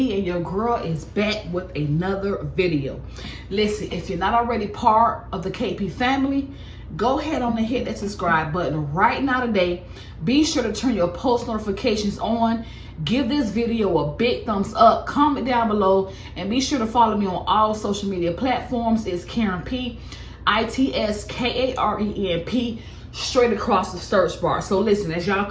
and your girl is back with another video. Listen, if you're not already part of the KP family, go ahead on and hit that subscribe button right now today. Be sure to turn your post notifications on. Give this video a big thumbs up. Comment down below, and be sure to follow me on all social media platforms. It's Karen P, ITSKARENP, straight across the search bar. So listen, as y'all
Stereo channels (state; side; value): identical; both; correlation 1.00